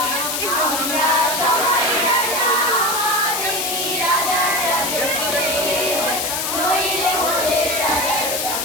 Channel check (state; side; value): noise; left; hiss, 1 dB below the sound